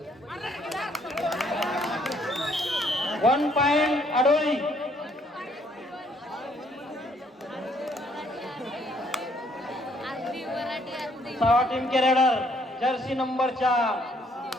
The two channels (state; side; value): normal; both; correlation 0.66